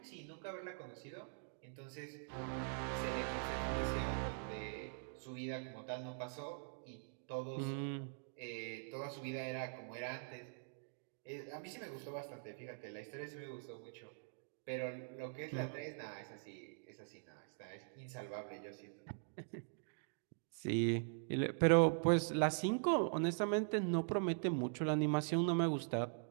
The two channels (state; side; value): silent; left; digital silence